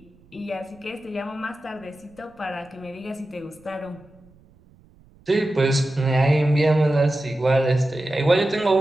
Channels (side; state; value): right; noise; rumble, 28 dB below the sound